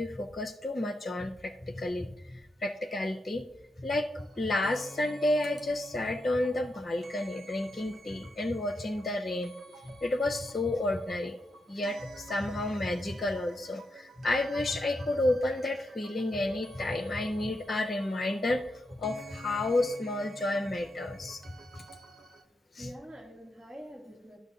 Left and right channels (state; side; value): normal; both; correlation 0.84